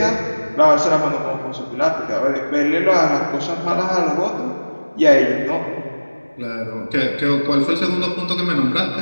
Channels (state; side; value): inverted; both; correlation -1.00